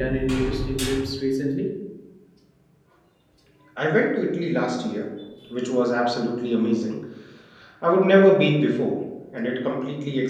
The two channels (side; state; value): both; identical; correlation 1.00